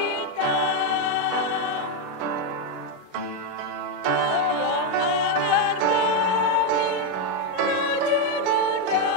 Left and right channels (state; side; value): late; left; 8.7 ms